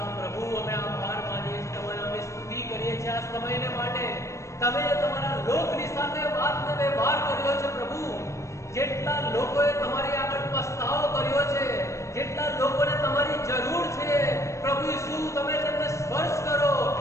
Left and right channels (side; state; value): right; late; 0.14 ms